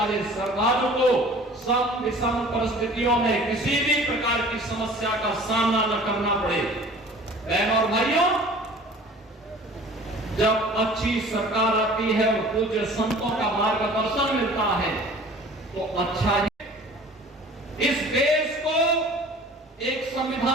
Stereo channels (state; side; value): normal; both; correlation 0.46